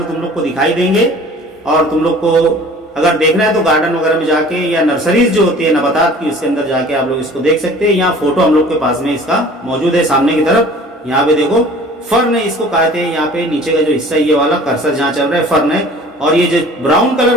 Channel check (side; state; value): both; normal; correlation 0.47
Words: तुम लोग को दिखाई देंगे, और तुम लोग को अगर देखना है तो गार्डन वगैरह में जाके या नर्सरीज जो होती है नबातात की, उसके अंदर जाके आप लोग इसको देख सकते हैं। यहाँ फोटो हम लोग के पास में इसका मौजूद है सामने की तरफ। यहाँ पे देखो फर्न है, इसको कहते हैं, यहाँ पे नीचे का जो हिस्सा ये वाला कर्सर जहाँ चल रहा है फर्न है, और ये जो ब्राउन